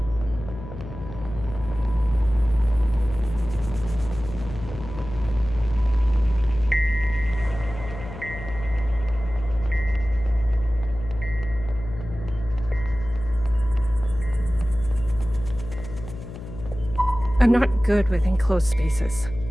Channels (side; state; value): left; noise; hum, 12 dB below the sound